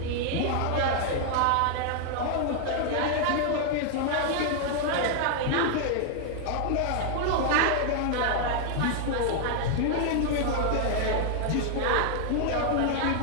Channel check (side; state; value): both; different; correlation 0.00